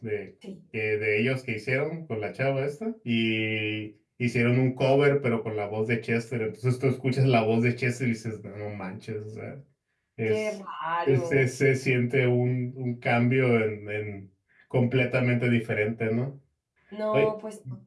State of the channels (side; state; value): both; identical; correlation 1.00